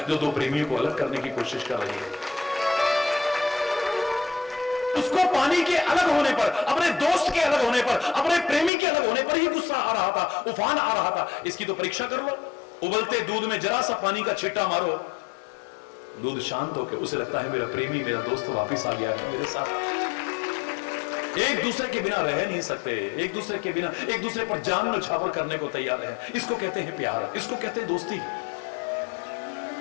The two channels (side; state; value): right; drops out; at 8.7 s